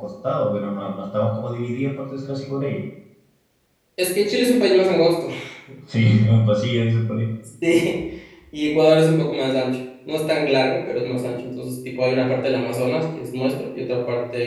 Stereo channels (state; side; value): identical; both; correlation 1.00